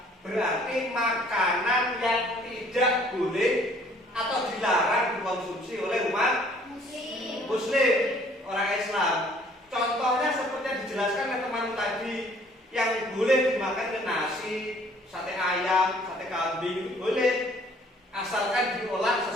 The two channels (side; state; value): both; normal; correlation 0.58